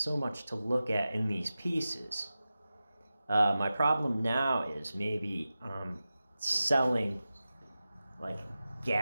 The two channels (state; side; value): inverted; both; correlation -0.94